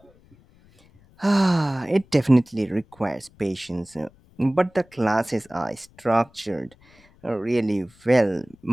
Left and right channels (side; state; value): left; noise; rumble, 29 dB below the sound